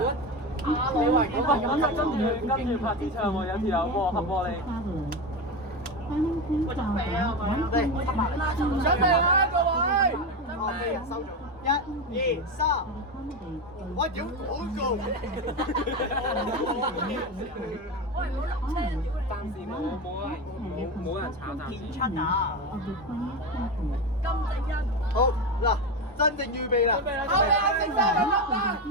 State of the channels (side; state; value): both; normal; correlation 0.18